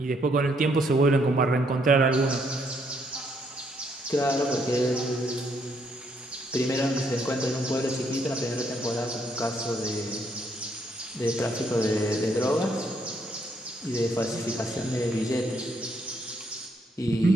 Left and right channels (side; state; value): both; normal; correlation 0.72